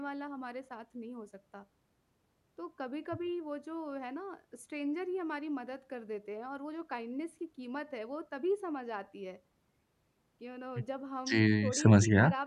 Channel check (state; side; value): identical; both; correlation 1.00